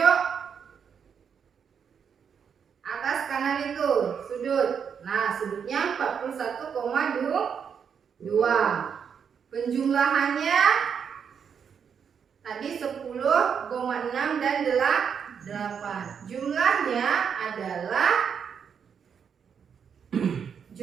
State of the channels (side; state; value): left; quieter; 7.1 dB